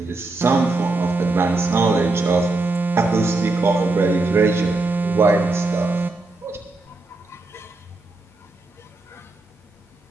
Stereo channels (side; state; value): left; quieter; 3.1 dB